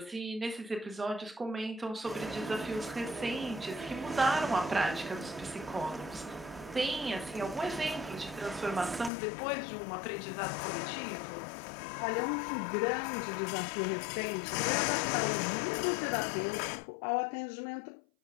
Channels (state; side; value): drops out; right; at 9.1 s